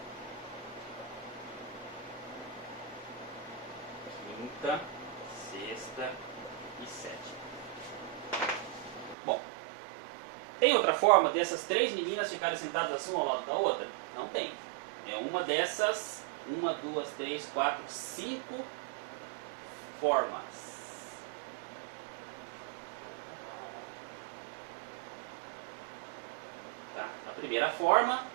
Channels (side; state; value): left; drops out; at 9.2 s